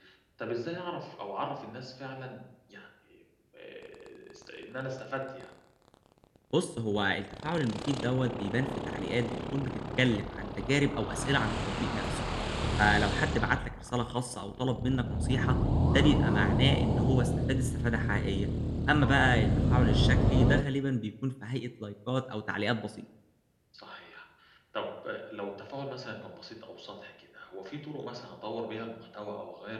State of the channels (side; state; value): both; identical; correlation 1.00